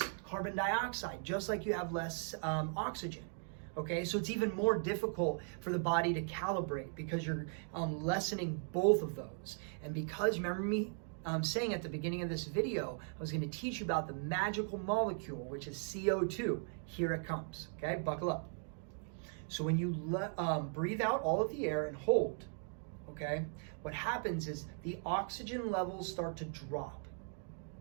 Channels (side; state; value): left; silent; 52 dB below the other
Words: carbon dioxide, just like you have less oxygen. Okay, so it's even more difficult for the body to calibrate because you're lessening both of those. And because, remember me saying at the beginning of this video, I was going to teach you about the magical molecule, which is CO2. Here it comes. Okay, buckle up. So when you breathe out all of the air and hold, okay, what happens is the oxygen levels start to drop.